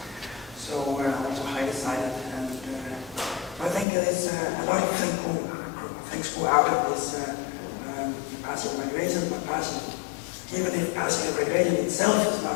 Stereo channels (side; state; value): right; drops out; at 3.9 s